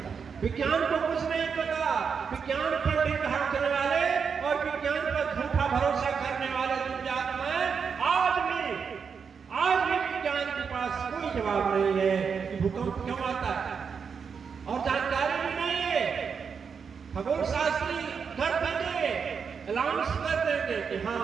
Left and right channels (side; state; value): left; quieter; 6.2 dB